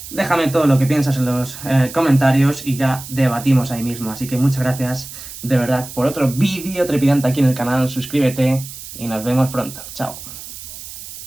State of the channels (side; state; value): right; noise; hiss, 13 dB below the sound